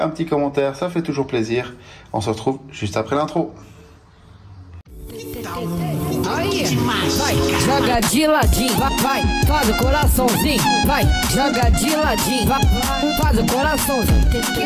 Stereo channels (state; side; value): identical; both; correlation 1.00